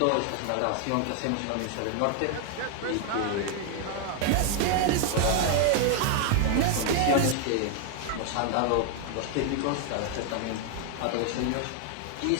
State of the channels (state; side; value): different; both; correlation 0.00